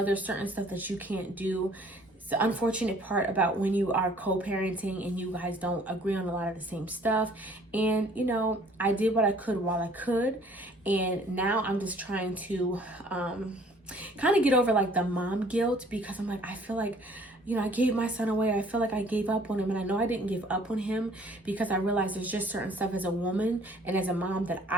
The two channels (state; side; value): normal; both; correlation 0.56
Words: certain stuff that you can't do. It's the unfortunate part about when you are co-parenting and you guys don't agree on a lot of the same stuff. And, I did what I could while I could. And now I'm just trying to kind of get over like the mom guilt, because I'm like, I feel like, I gave my son away. I feel like I gave up on him, and I know I didn't give up on him because I realized there's just certain stuff as a woman and as a mom that